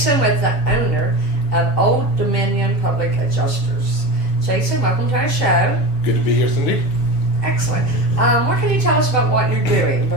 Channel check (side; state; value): right; late; 7.2 ms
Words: with the owner of Old Dominion Public Adjusters. Jason, welcome to our show. Good to be here, Cindy. Excellent. What can you tell us about what you're doing?